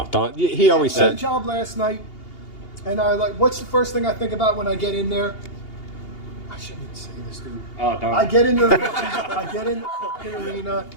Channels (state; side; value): late; right; 2.8 ms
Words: don't. He always I had a said. job last night, and I like. What's the first thing I think about when I get in there? I shouldn't even say this, dude. Oh, don't. I get in the fucking arena.